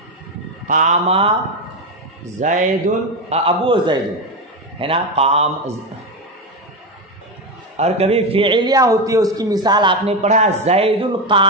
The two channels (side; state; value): both; normal; correlation 0.13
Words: قاما زید ابو زید ہے نا، قام. اور کبھی فعلیہ ہوتی ہے، اس کی مثال آپ نے پڑھا زید